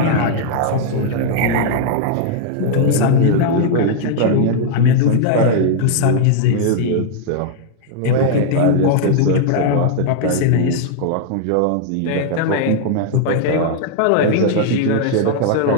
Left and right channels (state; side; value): different; both; correlation 0.00